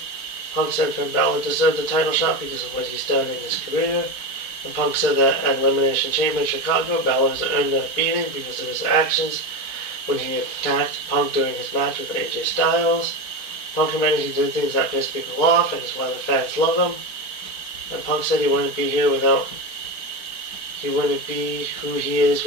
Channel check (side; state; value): right; late; 4.7 ms